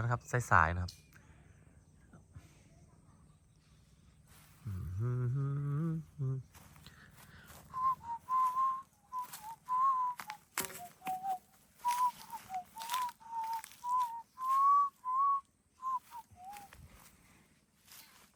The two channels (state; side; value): identical; both; correlation 1.00